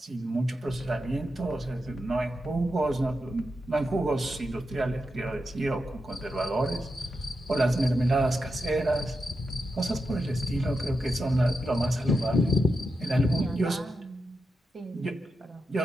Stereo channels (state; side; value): normal; both; correlation 0.87